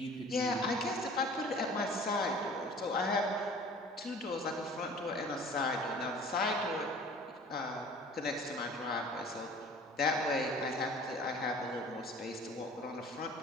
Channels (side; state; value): both; normal; correlation 0.47